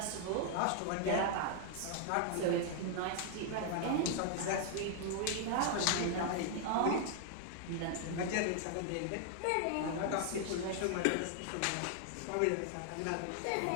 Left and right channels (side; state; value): both; different; correlation 0.00